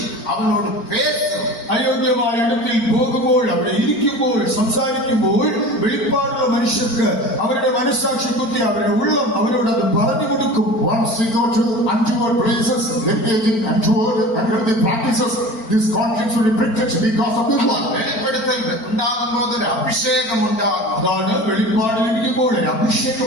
அவனோடு பேசும். അയോഗ്യമായ ഇടത്തിൽ പോകുമ്പോൾ അവിടെ ഇരിക്കുമ്പോൾ സംസാരിക്കുമ്പോൾ വെളിപ്പാടുള്ള മനുഷ്യർക്ക് അവരുടെ മനസ്സാക്ഷി കുത്തി അവരുടെ ഉള്ളം അവരോട് അത് പറഞ്ഞു കൊടുക്കും. Once we go to untoward places, engaging untoward unhealthy practices, this conscience will be pricked because of this one. വെളിപ്പെടുത്തൽ ഉണ്ടാകുമ്പോൾ ഒരു അഭിഷേകം ഉണ്ടാകും. അതാണ് വെളിപ്പാടിലിരിക്കുമ്പോൾ ഒരു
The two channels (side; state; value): right; late; 4.4 ms